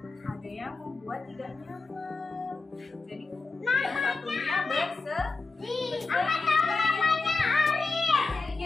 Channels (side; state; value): right; quieter; 3.9 dB